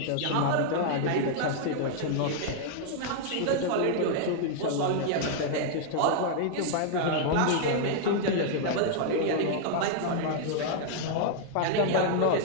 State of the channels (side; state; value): both; different; correlation 0.00